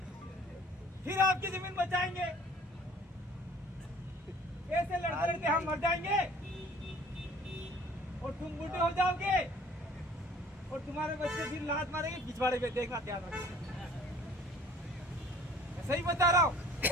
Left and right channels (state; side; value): normal; both; correlation 0.52